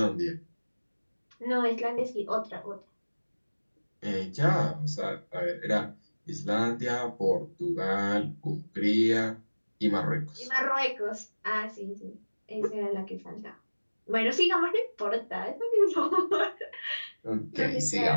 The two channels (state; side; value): inverted; both; correlation -1.00